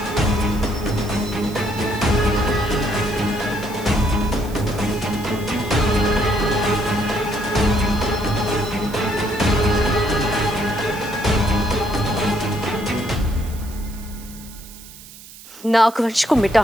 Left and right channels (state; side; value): noise; right; hiss, 18 dB below the sound